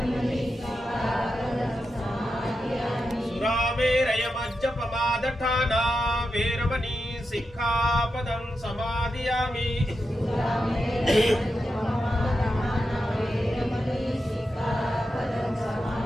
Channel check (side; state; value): both; normal; correlation 0.88